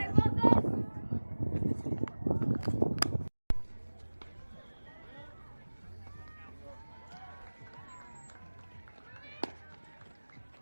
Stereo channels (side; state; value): both; inverted; correlation -1.00